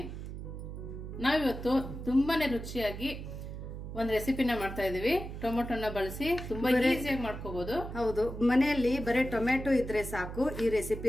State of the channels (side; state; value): right; noise; hum, 8 dB below the sound